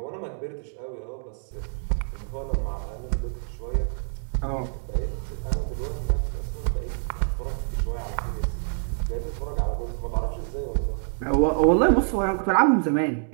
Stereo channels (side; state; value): left; silent; digital silence